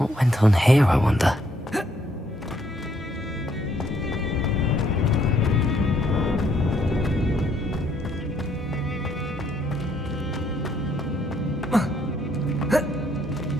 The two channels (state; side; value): normal; both; correlation 0.69